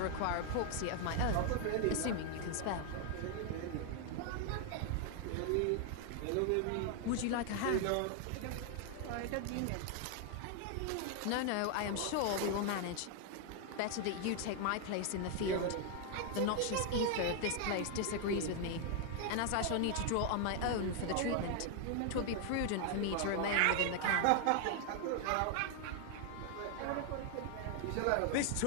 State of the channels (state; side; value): different; both; correlation 0.00